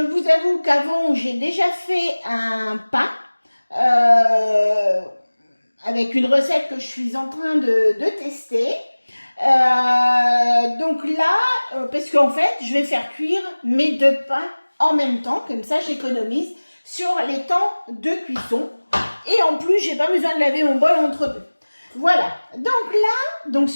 avoue qu'avant, j'ai déjà fait un pain avec une recette que je suis en train de tester. Donc là, parce qu'en fait, je vais faire cuire mes deux pains en même temps, comme ça j'économise sur les temps de cuisson. Et en plus, j'ai pas besoin de laver mon bol entre deux. Voilà. Donc là, donc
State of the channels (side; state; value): both; inverted; correlation -1.00